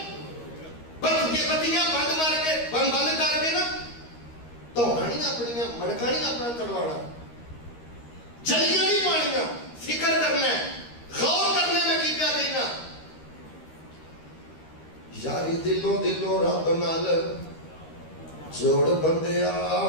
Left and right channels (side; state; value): right; late; 13 ms